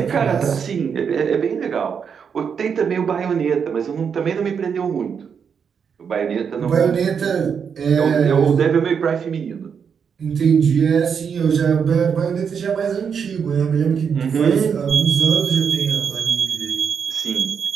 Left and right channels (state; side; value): quieter; left; 6.8 dB